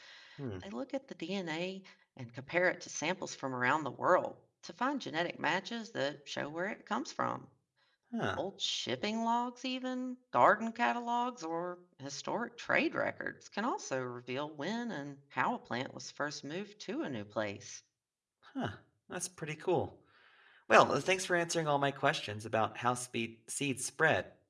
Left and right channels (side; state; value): both; identical; correlation 1.00